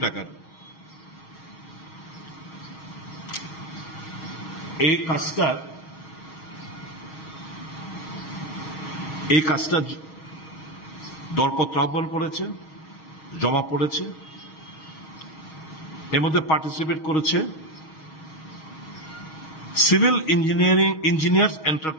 টাকার। এই কাজটা দরপত্র আহ্বান করেছে, জমা পড়েছে। এর মধ্যে পার্টিসিপেট করেছে সিভিল ইঞ্জিনিয়ার্স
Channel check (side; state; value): right; late; 6.4 ms